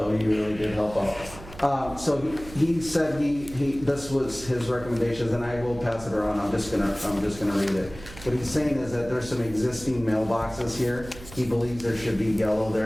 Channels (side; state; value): right; noise; hum, 16 dB below the sound